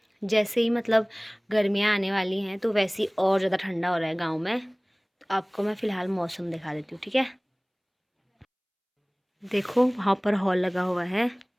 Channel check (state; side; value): identical; both; correlation 1.00